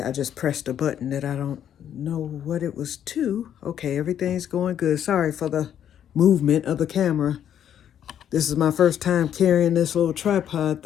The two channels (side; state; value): right; quieter; 9.7 dB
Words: just pressed a button that I don't know what it was to. Okay, everything's going good. Sorry for the movement of the camera. This is my first time carrying this little tripod